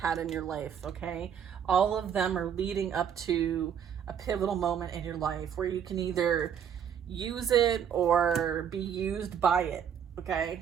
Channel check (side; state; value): left; quieter; 8.3 dB